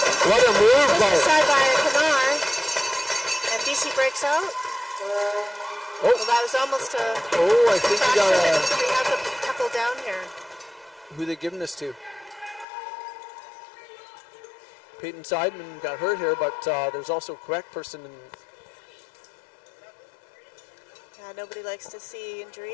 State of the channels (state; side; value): drops out; right; at 12.7 s